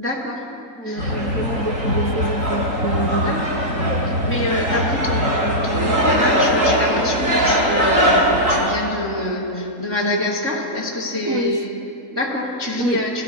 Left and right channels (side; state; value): left; late; 3.8 ms